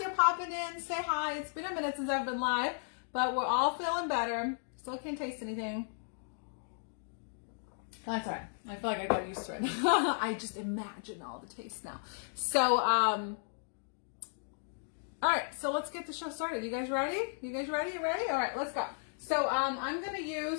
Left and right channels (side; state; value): right; silent; digital silence